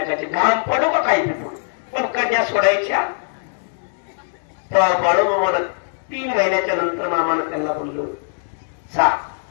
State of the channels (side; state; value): right; silent; digital silence